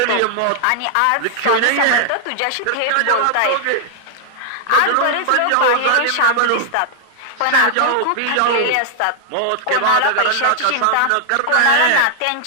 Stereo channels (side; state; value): both; different; correlation 0.00